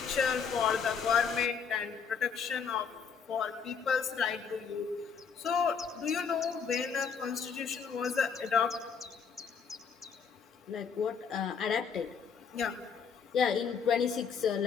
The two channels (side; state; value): right; quieter; 6.4 dB